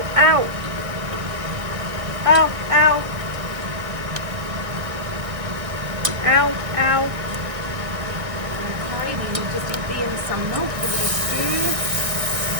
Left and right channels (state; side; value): late; left; 1.9 ms